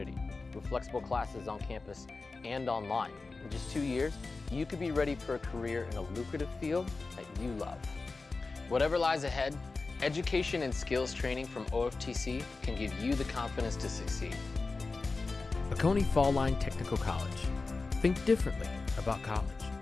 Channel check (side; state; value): right; quieter; 3.8 dB